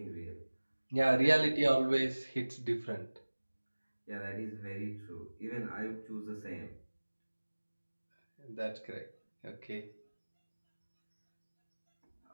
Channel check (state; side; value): inverted; both; correlation -1.00